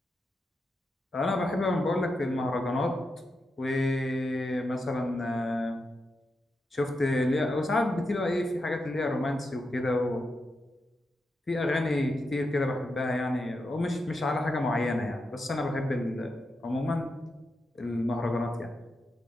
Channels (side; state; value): both; normal; correlation 0.86